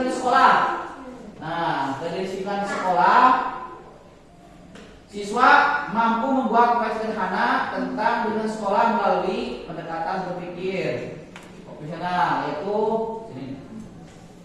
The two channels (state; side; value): identical; both; correlation 1.00